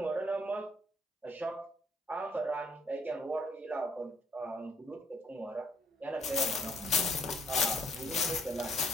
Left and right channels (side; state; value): both; normal; correlation 0.67